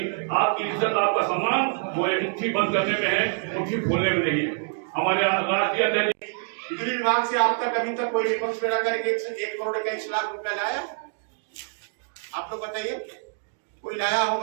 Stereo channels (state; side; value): silent; left; 61 dB below the other